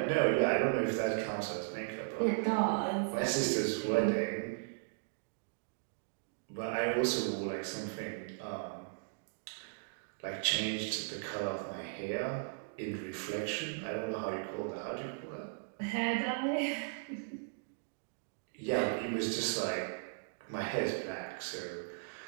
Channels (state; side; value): silent; left; digital silence